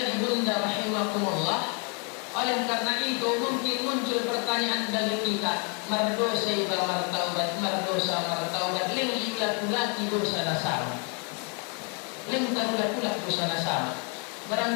ibunda rahimakumullah. Oleh karena itu mungkin muncul pertanyaan dari kita, mardosa iba martaubat, mardosa martaubat, ling ilat-ulati dosa nasama, ling tarulat-ulat dosa nasama.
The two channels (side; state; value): right; quieter; 36.7 dB